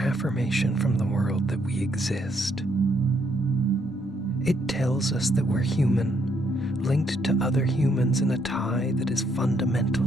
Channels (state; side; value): normal; both; correlation 0.72